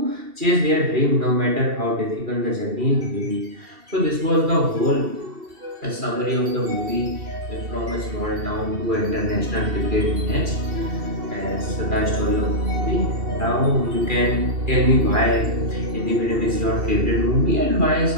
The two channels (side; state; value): left; late; 2.7 ms